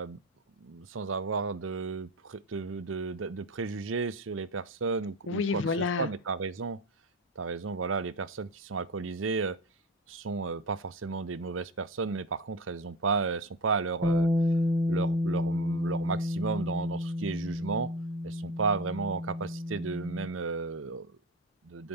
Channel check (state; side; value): normal; both; correlation 0.24